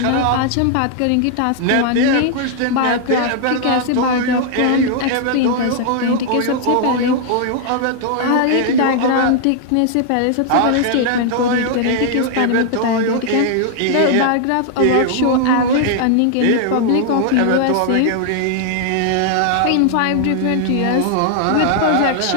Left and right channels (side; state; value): both; different; correlation 0.00